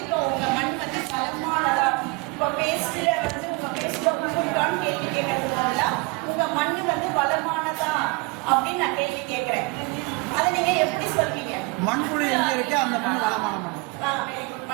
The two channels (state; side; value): quieter; left; 27.0 dB